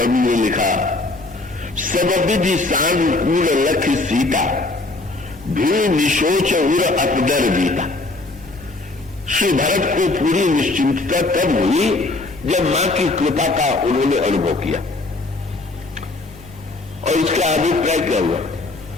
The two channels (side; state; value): right; quieter; 3.0 dB